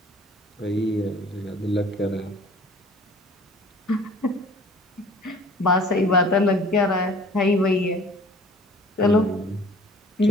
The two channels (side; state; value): both; normal; correlation 0.49